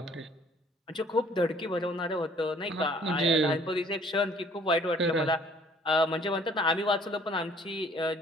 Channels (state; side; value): normal; both; correlation 0.57